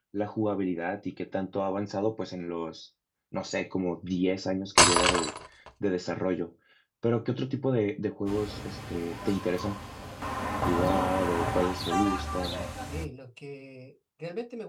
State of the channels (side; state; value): both; identical; correlation 1.00